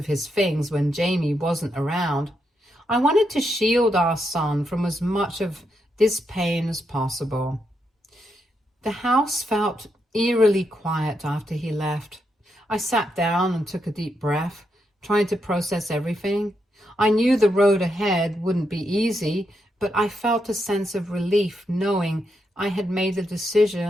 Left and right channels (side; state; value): both; normal; correlation 0.81